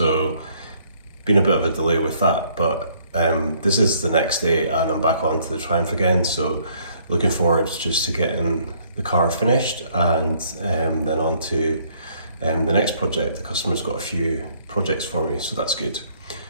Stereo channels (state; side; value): inverted; both; correlation -0.64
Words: been a bit of a delay with that, but this is the next day and I'm back onto the Triumph again, so looking forward just to getting the car finished and then on to the next project. The customer's got a few projects for me, so that's good.